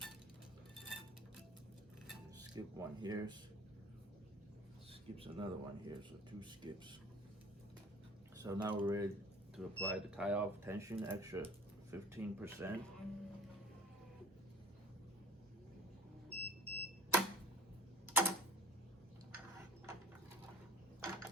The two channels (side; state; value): both; normal; correlation 0.47